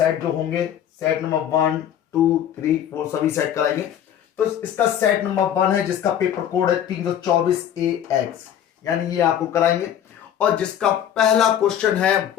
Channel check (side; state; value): right; quieter; 10.0 dB